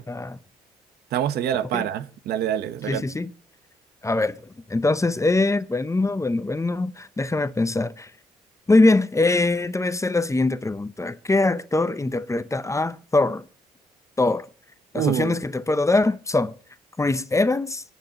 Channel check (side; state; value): both; normal; correlation 0.79